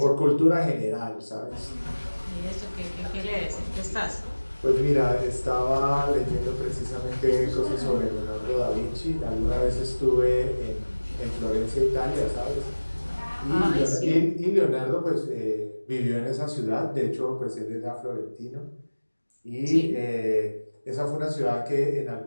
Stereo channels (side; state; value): both; inverted; correlation -1.00